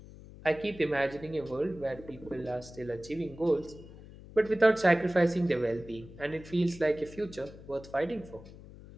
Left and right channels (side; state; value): left; noise; hum, 17 dB below the sound